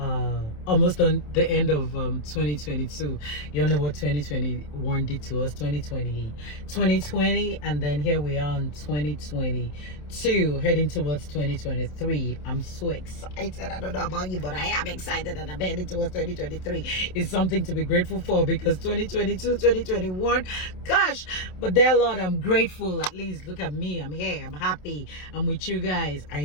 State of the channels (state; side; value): late; right; 27 ms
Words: almost on the end of 2022. You all know what 2021 did to us. 2020, and then here we are in 2022, heading towards 2023. I'm so excited. I don't know about you, but I am excited, and I'm heading towards 2023. It's something to be grateful for, because 2022, 2021, gosh, but there, Lord, I'm grateful. At least look at me, I'm here, I'm happy, I'm with you guys. I